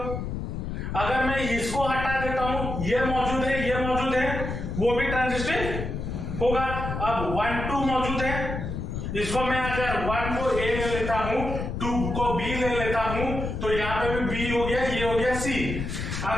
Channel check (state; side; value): noise; left; rumble, 4 dB below the sound